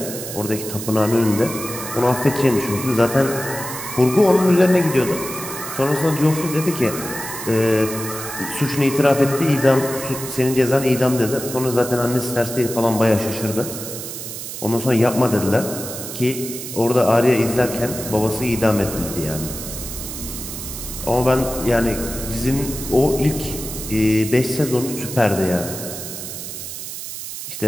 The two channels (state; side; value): noise; right; hiss, 8 dB below the sound